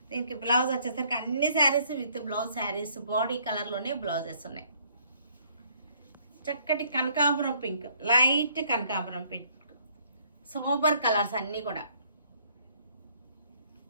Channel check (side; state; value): both; inverted; correlation -0.64